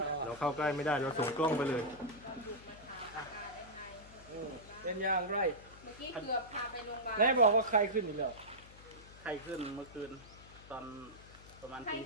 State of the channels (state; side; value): noise; left; hum, 19 dB below the sound